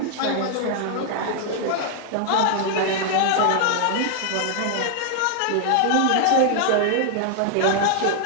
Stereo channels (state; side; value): different; both; correlation 0.00